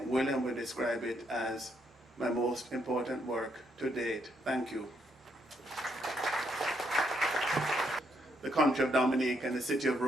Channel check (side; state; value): both; normal; correlation 0.75